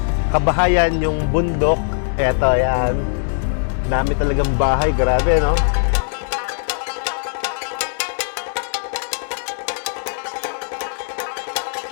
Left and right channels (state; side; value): silent; right; 62 dB below the other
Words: kabahayan, yung bundok. Eto, yan. Dami talagang bahay, grabe, no?